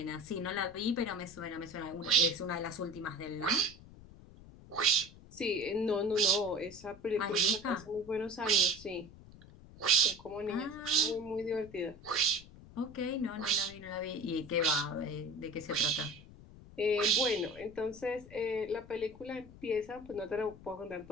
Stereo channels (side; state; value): left; noise; rumble, 19 dB below the sound